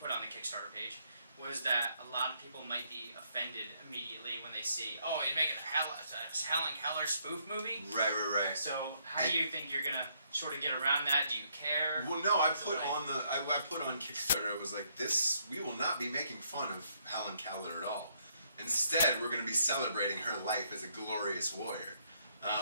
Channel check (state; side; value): inverted; both; correlation -0.71